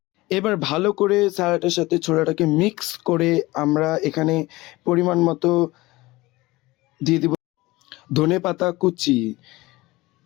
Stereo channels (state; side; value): quieter; right; 20.3 dB